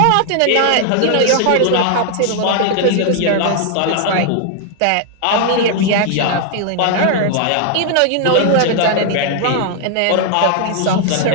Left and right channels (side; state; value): both; different; correlation 0.00